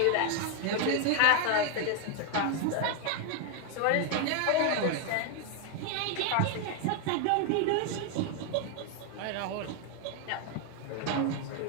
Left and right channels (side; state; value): both; different; correlation 0.01